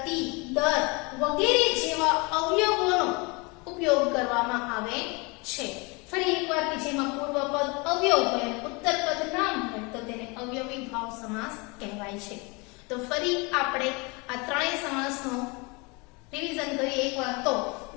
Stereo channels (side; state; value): right; quieter; 28.4 dB